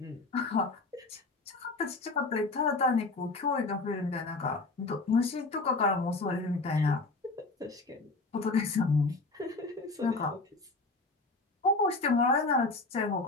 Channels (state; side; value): quieter; right; 3.4 dB